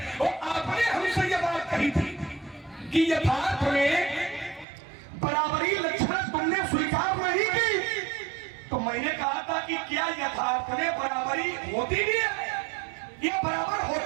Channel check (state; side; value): drops out; left; at 4.7 s